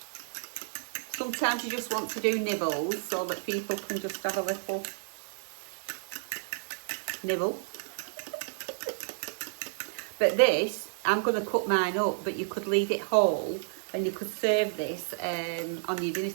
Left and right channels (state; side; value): silent; left; digital silence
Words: Sometimes you just want to do nibbles so that people can just have a little nibble. But this, I'm going to cut mine up, but you could leave it whole and you could serve this on your dinner